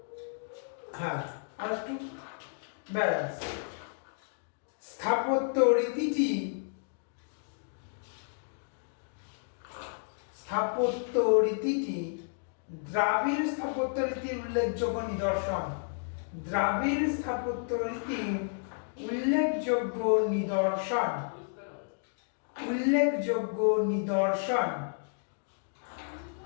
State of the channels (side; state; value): right; silent; digital silence